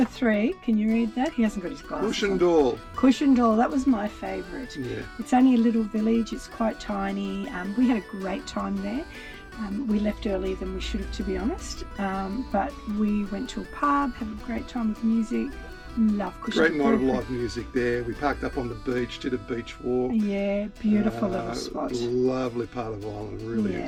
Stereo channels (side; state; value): both; identical; correlation 1.00